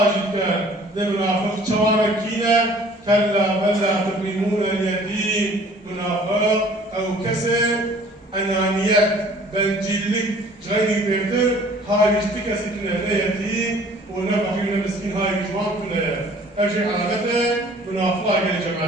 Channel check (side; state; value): both; normal; correlation 0.53